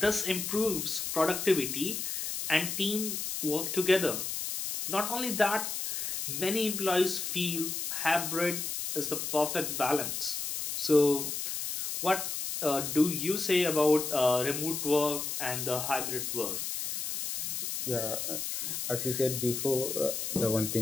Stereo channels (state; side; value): noise; left; hiss, 3 dB below the sound